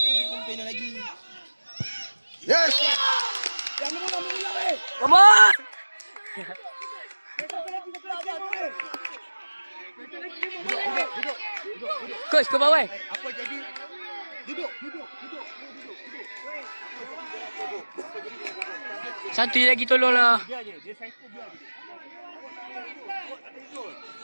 Yes. Come on! Coach, ke bawah. Apa jadi? Duduk. Satu je lagi tolonglah. Dia psycho biar je.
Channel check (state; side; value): inverted; both; correlation -1.00